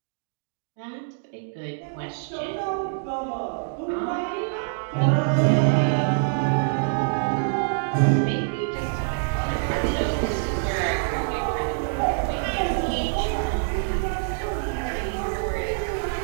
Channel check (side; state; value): left; silent; digital silence